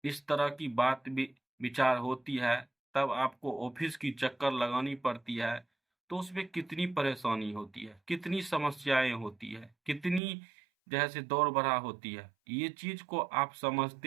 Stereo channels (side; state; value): left; drops out; at 10.2 s